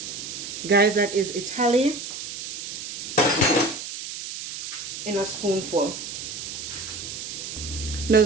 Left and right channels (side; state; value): right; noise; hiss, 8 dB below the sound